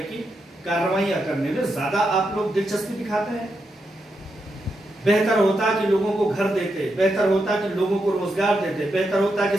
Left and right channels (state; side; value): normal; both; correlation 0.84